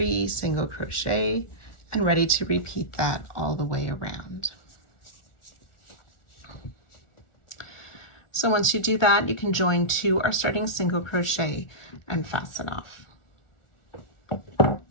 single crochet, and ready to repeat that all the way around. So once you do that, you can join to our starting single crochet and fasten off.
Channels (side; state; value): right; late; 1.4 ms